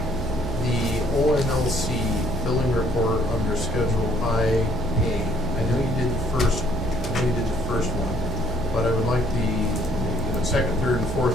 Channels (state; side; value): noise; right; hum, 8 dB below the sound